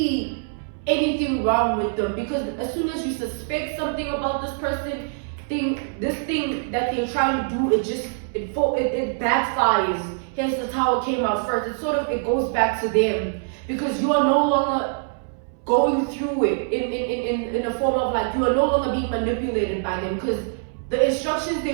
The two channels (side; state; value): left; silent; 60 dB below the other